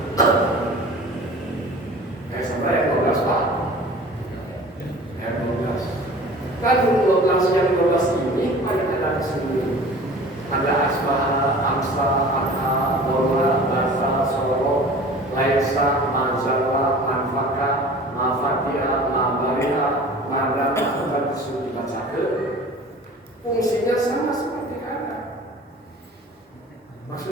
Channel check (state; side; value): normal; both; correlation 0.42